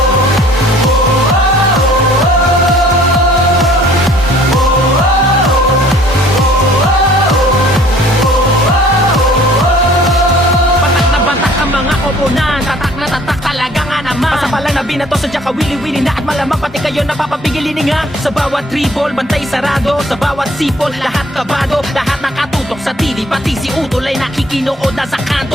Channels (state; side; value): normal; both; correlation 0.55